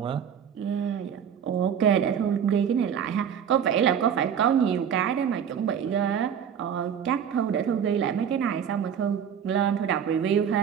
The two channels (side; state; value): left; quieter; 8.2 dB